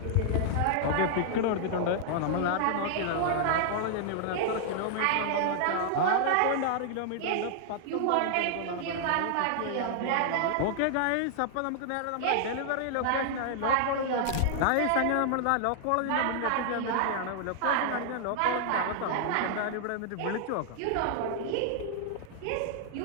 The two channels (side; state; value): both; different; correlation -0.01